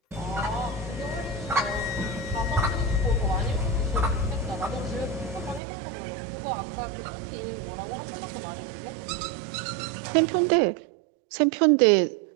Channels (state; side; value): drops out; left; at 5.6 s